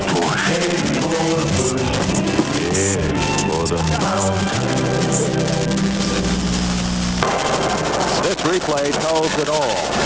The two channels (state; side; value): identical; both; correlation 1.00